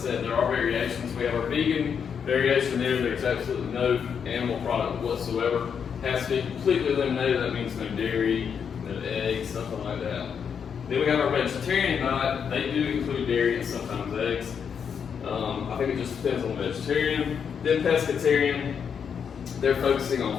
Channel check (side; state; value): right; quieter; 7.1 dB